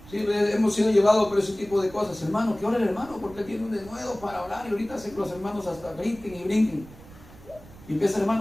Sí, hemos sido llevados por ese tipo de cosas. Hermano, que ora el hermano porque tiene un denuedo para orar y ahorita hacen los hermanos hasta brinquen y brinquen. Y empieza el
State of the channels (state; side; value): noise; right; rumble, 20 dB below the sound